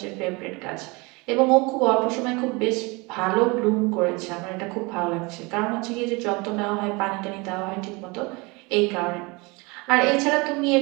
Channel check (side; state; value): left; quieter; 26.5 dB